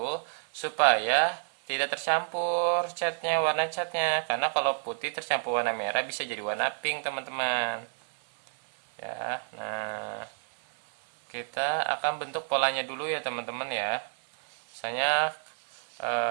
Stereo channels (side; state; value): left; silent; 58 dB below the other